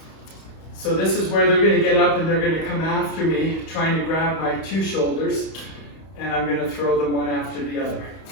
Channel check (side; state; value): right; late; 31 ms